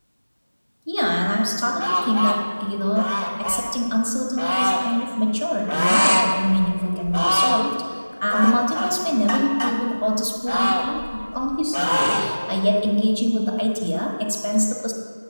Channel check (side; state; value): both; inverted; correlation -1.00